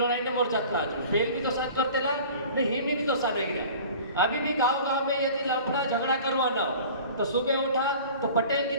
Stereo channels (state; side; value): inverted; both; correlation -0.43